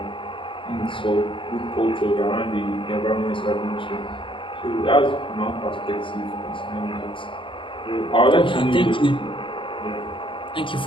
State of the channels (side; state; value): right; late; 0.25 ms